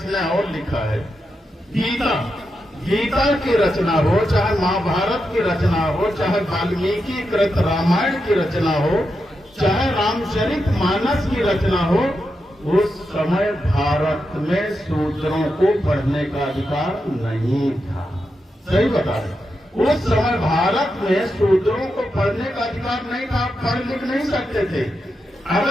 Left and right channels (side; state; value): both; normal; correlation 0.87